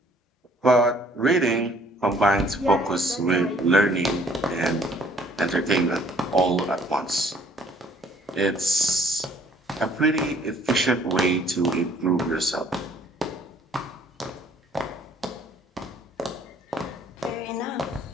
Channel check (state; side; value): normal; both; correlation 0.59